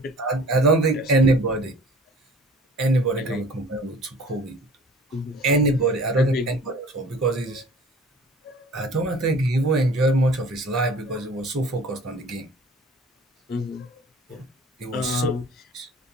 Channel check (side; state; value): both; normal; correlation 0.47